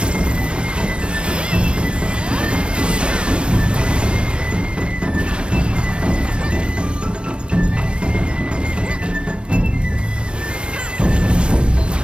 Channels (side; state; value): left; late; 0.055 ms